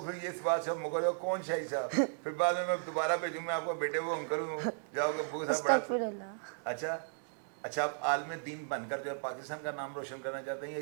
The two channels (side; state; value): left; silent; digital silence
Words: پھر یہ اس بات سے مکر جاؤ کون شاہی صاحب, پھر بعد میں دوبارہ بھیجوں میں آپ کو بیٹے وہ انکل ہوں, جاؤ گے ابو صاحب بڑا. اچھا اچھا, آپ عالم دین بن کر جو ہے پاکستان کا نام روشن کرنا چاہتے ہیں یا